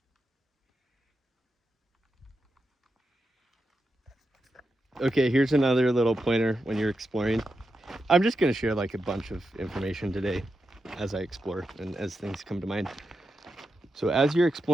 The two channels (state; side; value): normal; both; correlation 0.87